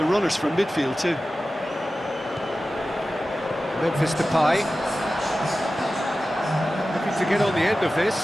runners from midfield too. Memphis Depay. Looking to get on the end of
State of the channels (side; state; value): both; normal; correlation 0.94